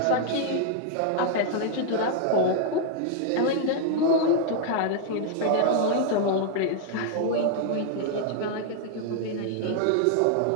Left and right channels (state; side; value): different; both; correlation 0.00